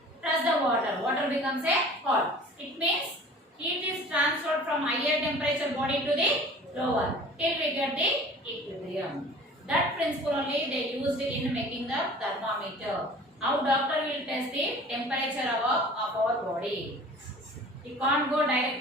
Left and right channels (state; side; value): normal; both; correlation 0.44